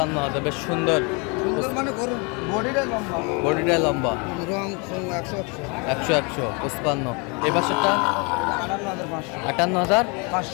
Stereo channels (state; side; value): quieter; right; 31.5 dB